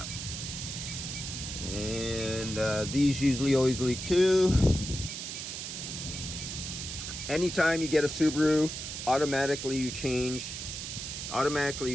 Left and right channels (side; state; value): right; noise; hiss, 6 dB below the sound